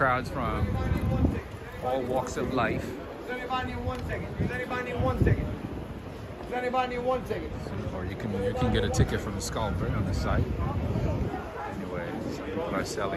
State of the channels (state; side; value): identical; both; correlation 1.00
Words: from all walks of life. Does anybody need 1 second? Does anybody need 1 second? Does anybody need 1 second? Or you can get a ticket from the Scalper on the site. Anyway, some people are